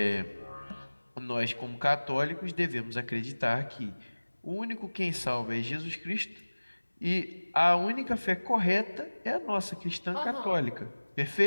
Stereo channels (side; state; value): both; inverted; correlation -1.00